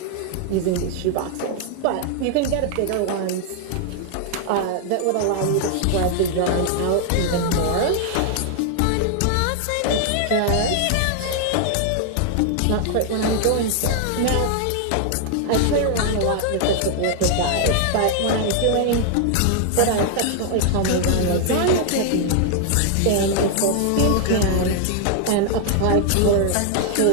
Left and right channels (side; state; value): both; different; correlation 0.00